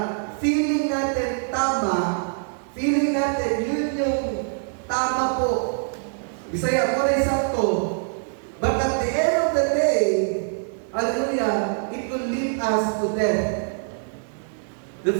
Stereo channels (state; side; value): silent; left; digital silence